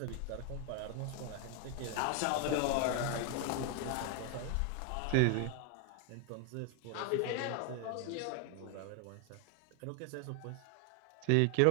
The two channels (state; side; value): different; both; correlation 0.00